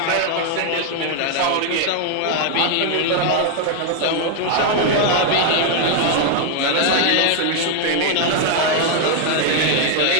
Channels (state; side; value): different; both; correlation 0.00